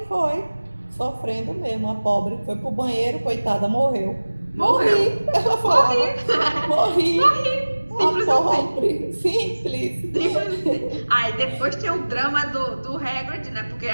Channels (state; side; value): inverted; both; correlation -1.00